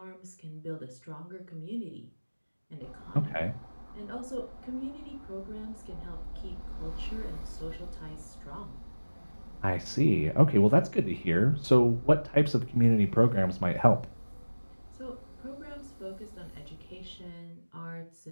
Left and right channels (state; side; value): inverted; both; correlation -1.00